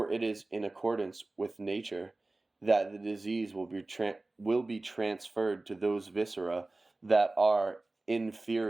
it is in accordance with nature that the disease will be transferred to those viscera that are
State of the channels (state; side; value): quieter; left; 3.0 dB